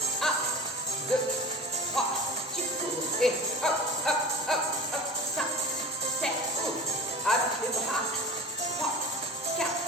1, 2, 3, tu cours et hop, hop, hop, hop, 5, 7, cours. Avec les bras, 3, 4,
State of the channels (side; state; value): both; normal; correlation 0.35